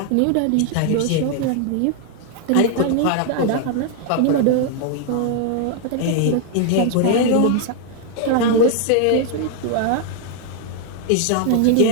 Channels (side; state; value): both; different; correlation 0.00